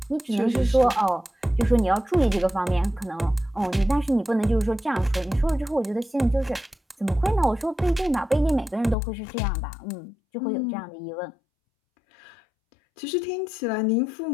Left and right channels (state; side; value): drops out; right; at 9.0 s